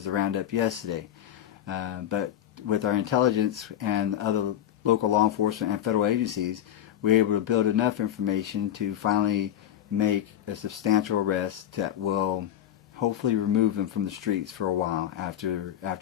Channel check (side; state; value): right; quieter; 10.9 dB